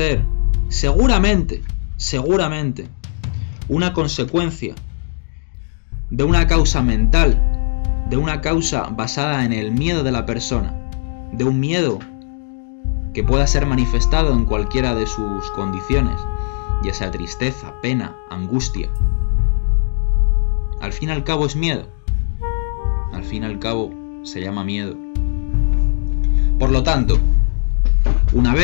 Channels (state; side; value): silent; right; digital silence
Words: seguramente, una consecuencia de una causa mental, de una causa basada en el miedo de la persona, de un miedo que pueda ser manifestado en cualquiera de sus condiciones, ya sea tristeza, pena, angustia. Al fin y al cabo es miedo. Al fin y al cabo se llama miedo. Por lo tanto, una